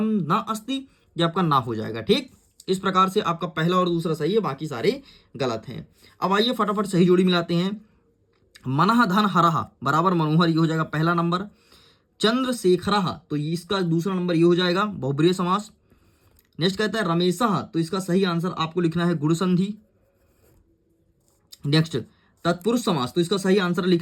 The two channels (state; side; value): identical; both; correlation 1.00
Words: न अस्ति। ये आपका ना हो जाएगा। ठीक, इस प्रकार से आपका पहला और दूसरा सही है, बाकी सारे गलत हैं। अब आइए फटाफट सही जोड़ी मिलाते हैं। मनः धन हरः बराबर मनोहर, ये हो जाएगा पहला नंबर। चंद्रशेखरः तो इसका दूसरा नंबर ये हो जाएगा बहुब्रीहि समास। नेक्स्ट कहता है रमेशः, तो इसका सही आंसर आपको लिखना है गुण संधि। नेक्स्ट तत्पुरुष समास, तो इसका सही आंसर